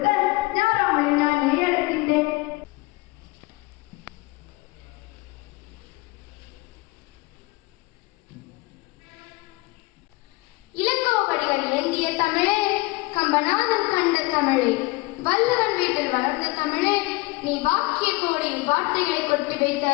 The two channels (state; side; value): quieter; right; 23.1 dB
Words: ஞாராமலை நான் அழைக்கின்றேன். இளங்கோவடிகள் ஏந்திய தமிழே, கம்பநாதன் கண்ட தமிழே, வள்ளுவன் வீட்டில் வளர்ந்த தமிழே, நீ வாக்கிய கோடியில் வார்த்தைகளை கொட்டி வைத்த